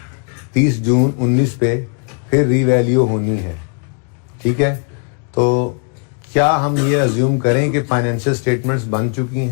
30 जून 19 पे फिर रीवैल्यू होनी है, ठीक है? तो क्या हम ये अज्यूम करें कि फाइनेंशियल स्टेटमेंट्स बन चुकी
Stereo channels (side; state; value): right; quieter; 38.8 dB